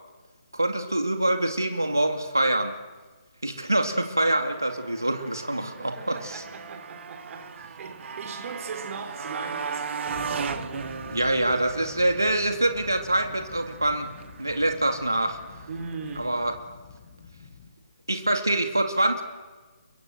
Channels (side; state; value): both; inverted; correlation -0.85